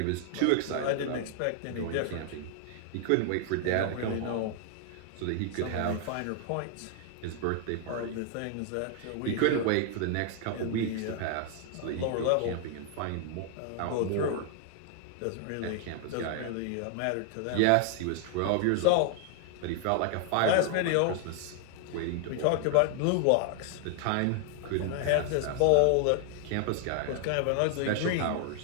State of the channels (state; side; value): different; both; correlation 0.00